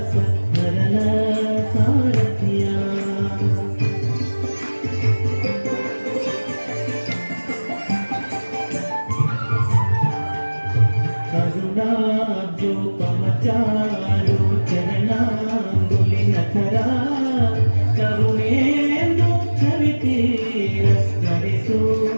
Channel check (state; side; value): inverted; both; correlation -1.00